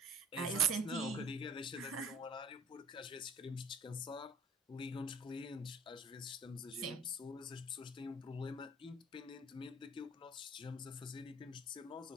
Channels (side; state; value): both; normal; correlation 0.51